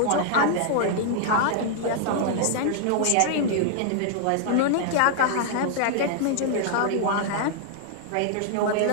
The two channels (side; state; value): both; different; correlation -0.01